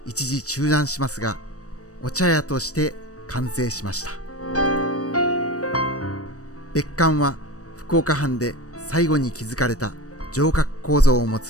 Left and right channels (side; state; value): right; late; 0.66 ms